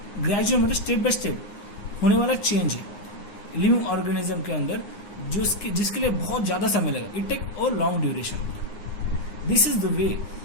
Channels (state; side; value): late; right; 9.6 ms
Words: ग्रेजुअल मतलब स्टेप बाय स्टेप होने वाला चेंज है लिविंग ऑर्गेनिज्म के अंदर, जो जिसके लिए बहुत ज़्यादा समय लगा. It take a long duration. This